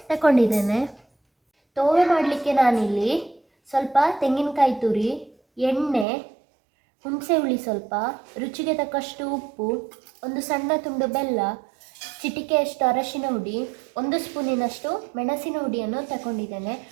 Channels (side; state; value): left; drops out; at 6.1 s